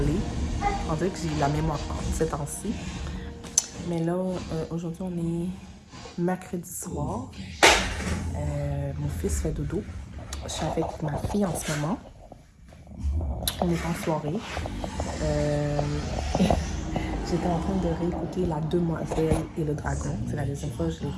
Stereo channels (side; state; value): both; identical; correlation 1.00